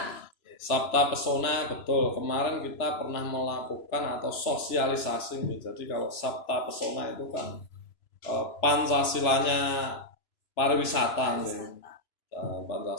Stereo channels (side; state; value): right; late; 3.0 ms